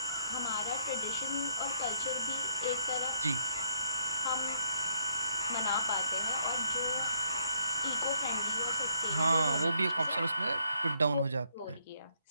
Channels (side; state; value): both; inverted; correlation -0.67